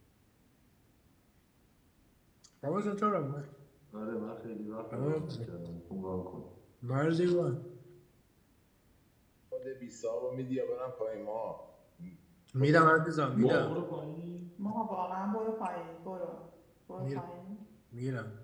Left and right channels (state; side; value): identical; both; correlation 1.00